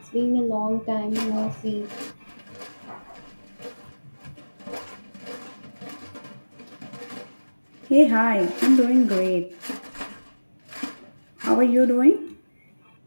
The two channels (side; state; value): both; inverted; correlation -1.00